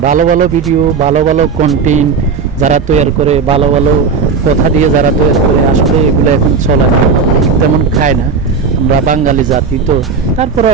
ভালো ভালো ভিডিও, ভালো ভালো কন্টেন্ট যারা তৈরি করে, ভালো ভালো কথা দিয়ে যারা তৈরি করে, আসলে এগুলো এখন চলে না, তেমন খায় না। আমরা বাঙালি জাতি তো, তারপরে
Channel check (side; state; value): left; quieter; 5.4 dB